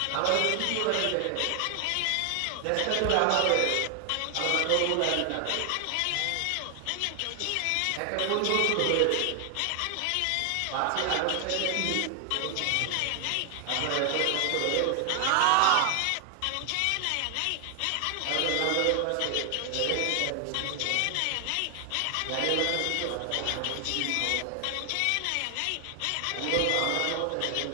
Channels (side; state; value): both; different; correlation 0.00